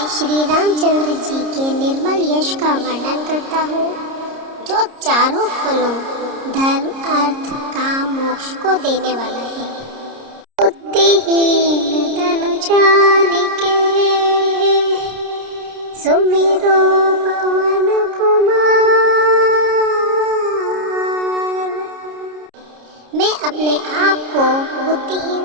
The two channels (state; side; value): late; left; 30 ms